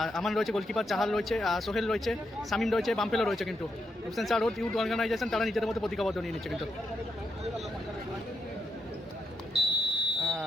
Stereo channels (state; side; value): normal; both; correlation 0.82